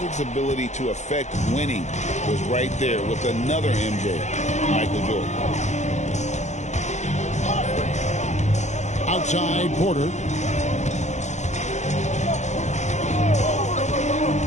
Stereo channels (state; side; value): late; right; 0.34 ms